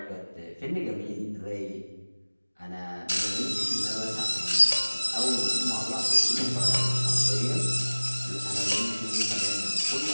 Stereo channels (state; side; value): inverted; both; correlation -1.00